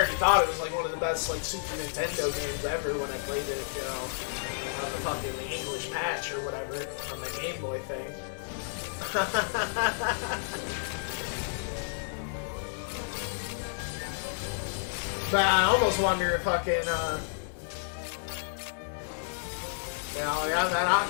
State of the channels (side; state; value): right; silent; digital silence